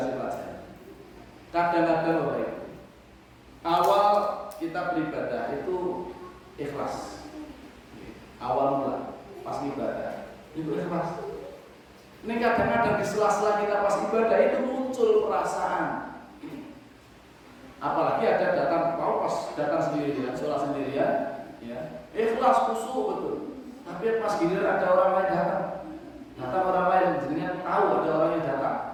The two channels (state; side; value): identical; both; correlation 1.00